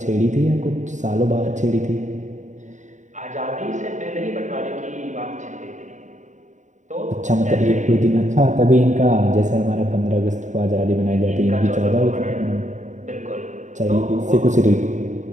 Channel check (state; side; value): late; left; 0.35 ms